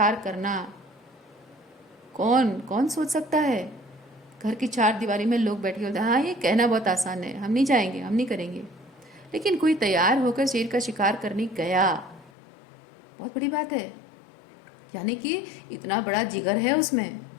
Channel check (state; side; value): drops out; right; at 12.3 s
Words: करना कौन कौन सोच सकता है? घर की चार दीवारी में लोग बैठे होते हैं, हाँ ये कहना बहुत आसान है, हम नहीं जाएंगे, हम नहीं करेंगे, लेकिन कोई तैयार होकर शेर का शिकार करने गया, बहुत बड़ी बात है। यानी कि इतना बड़ा जिगर है उसमें,